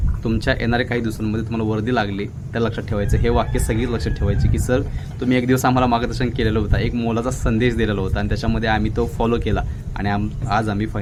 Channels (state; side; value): identical; both; correlation 1.00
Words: तुमच्या येणाऱ्या काही दिवसांमध्ये तुम्हाला वर्दी लागली, तर लक्षात ठेवायचं. हे वाक्य सगळी लक्षात ठेवायचे की सर तुम्ही एक दिवस आम्हाला मार्गदर्शन केलेलं होतं, एक मोलाचा संदेश दिलेला होता आणि त्याच्यामध्ये आम्ही तो फॉलो केला आणि आज आम्ही